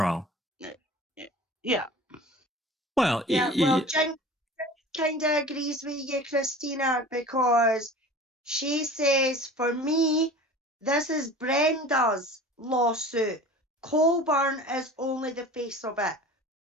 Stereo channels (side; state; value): both; normal; correlation 0.40